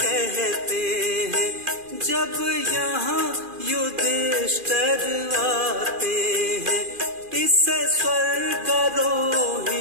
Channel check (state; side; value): late; left; 2.4 ms